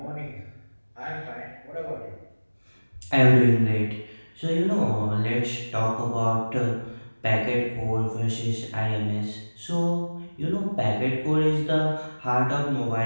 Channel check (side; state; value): both; inverted; correlation -1.00